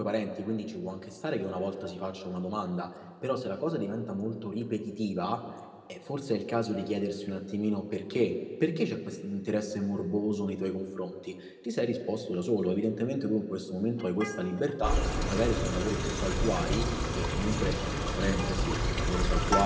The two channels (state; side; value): identical; both; correlation 1.00